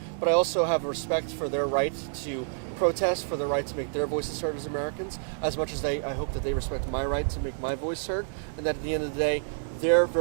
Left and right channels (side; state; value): left; silent; digital silence